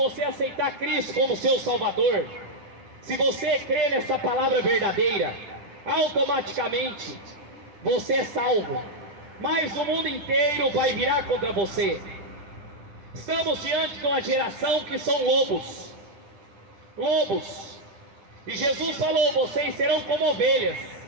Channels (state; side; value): late; left; 10 ms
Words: aceitar Cristo como seu Salvador, se você crer nessa palavra verdadeira, automaticamente você é salvo, mas o mundo inteiro vai virar contra você. Estamos diante de uma geração que são lobos, e Jesus falou: vocês serão como ovelhas,